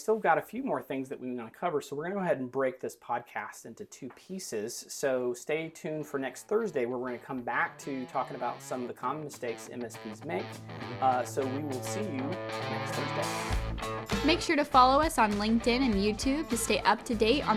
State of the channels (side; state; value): both; identical; correlation 1.00